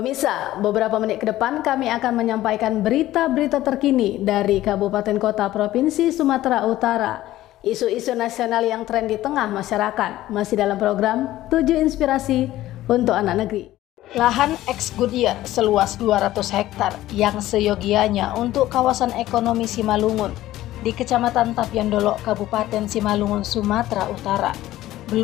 beberapa menit ke depan kami akan menyampaikan berita-berita terkini dari Kabupaten Kota Provinsi Sumatera Utara. Isu-isu nasional yang tren di tengah masyarakat masih dalam program 7 Inspirasi untuk Anak Negeri. Lahan ex Goodyear seluas 200 hektar yang seyogianya untuk kawasan ekonomi Simalungun di Kecamatan Tapyandolo, Kabupaten Simalungun, Sumatera Utara,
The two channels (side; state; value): right; quieter; 15.0 dB